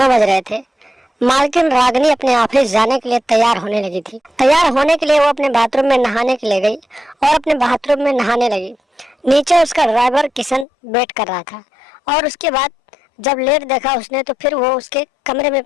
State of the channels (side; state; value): right; drops out; at 10.7 s